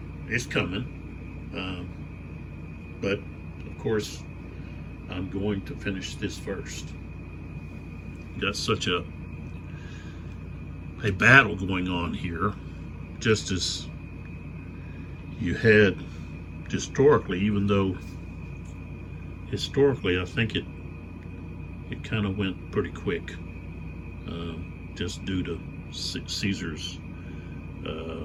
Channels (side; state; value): both; identical; correlation 1.00